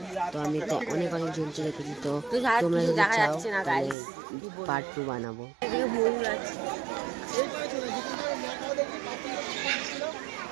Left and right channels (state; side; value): drops out; left; at 4.0 s